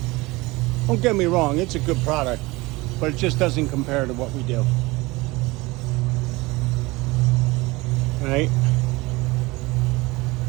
get me wrong, it's a good product, but it just doesn't compare to what we do. Right?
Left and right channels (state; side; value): quieter; left; 22.2 dB